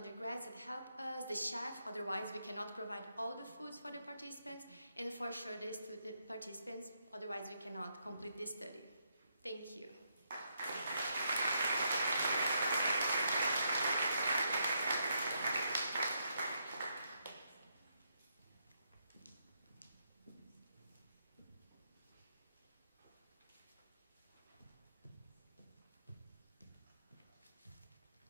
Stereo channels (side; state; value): both; inverted; correlation -0.78